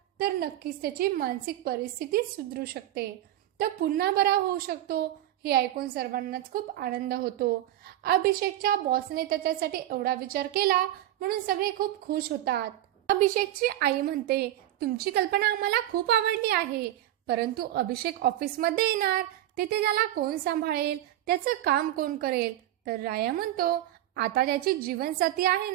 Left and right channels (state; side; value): quieter; left; 13.6 dB